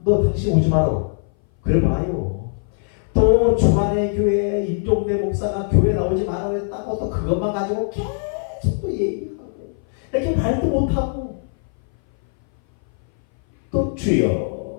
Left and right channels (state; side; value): silent; right; 59 dB below the other